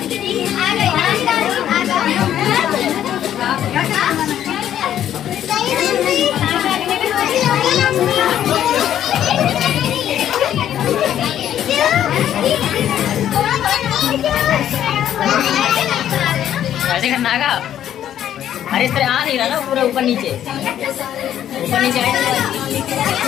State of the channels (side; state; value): right; quieter; 10.8 dB